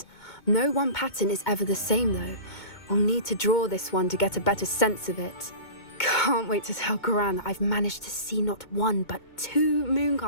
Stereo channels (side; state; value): right; late; 2.2 ms